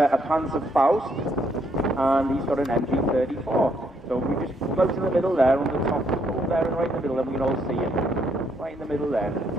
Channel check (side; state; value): both; normal; correlation 0.72